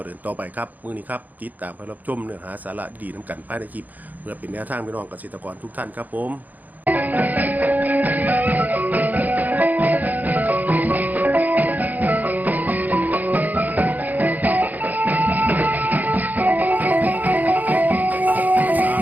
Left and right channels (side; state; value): left; late; 0.081 ms